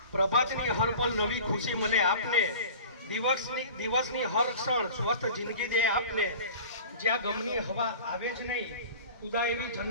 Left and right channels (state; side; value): inverted; both; correlation -0.40